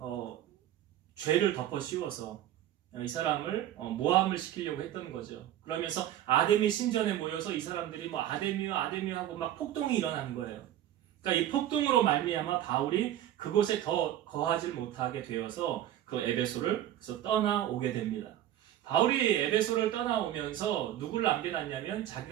죄를 덮어 씌워서 이 사람을 모함을 시키려고 했던 거죠. 그러면서 아데미 신전에 모여서 이 사람들이 뭐 아데미요 하고 막 폭동이 일어나는 거예요. 그러니까 이 폭동으로 말미암아 바울이 그곳에 더 거하지 못하게 되어서 그 에베소를 그래서 떠나오게 됩니다. 바울이 에베소를 떠나오면서 누굴 남겨놨냐면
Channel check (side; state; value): left; quieter; 12.3 dB